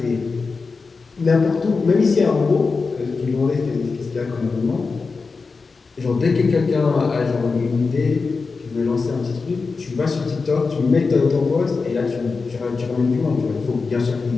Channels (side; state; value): right; quieter; 4.5 dB